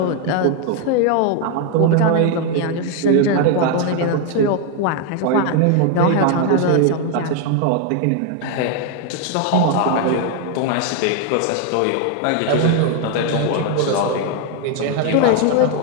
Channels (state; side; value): different; both; correlation 0.01